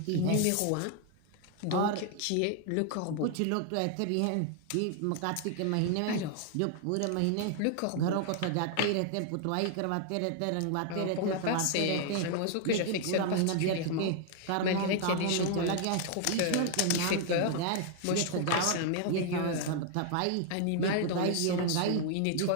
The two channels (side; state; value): both; different; correlation 0.00